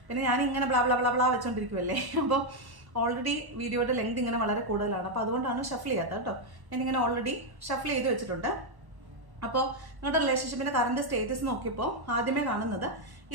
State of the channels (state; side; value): late; left; 1.1 ms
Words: പിന്നെ ഞാനിങ്ങനെ ബ്ലാ ബ്ലാ ബ്ലാ ബ്ലാ വെച്ചോണ്ടിരിക്കുമല്ലേ, അപ്പോൾ ഓൾറെഡി വീഡിയോയുടെ ലെങ്ത് ഇങ്ങനെ വളരെ കൂടുതലാണ്. അപ്പോൾ അതുകൊണ്ടാണ് ഷഫിൾ ചെയ്യാത്തത് കേട്ടോ. ഞാനിങ്ങനെ ഓൾറെഡി ഷഫിൾ ചെയ്ത് വെച്ചിട്ടുണ്ട്. അപ്പോൾ നിങ്ങളുടെ റിലേഷൻഷിപ്പിന്റെ കറണ്ട് സ്റ്റേറ്റസ് നോക്കിയപ്പോൾ ആദ്യമേ കാണുന്നത്